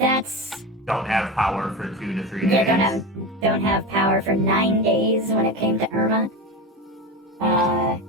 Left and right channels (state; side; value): normal; both; correlation 0.22